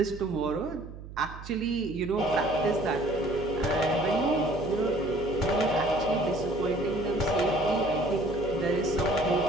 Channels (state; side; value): noise; right; hum, 13 dB below the sound